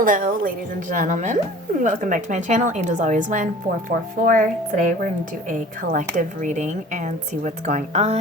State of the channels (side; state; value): both; normal; correlation 0.45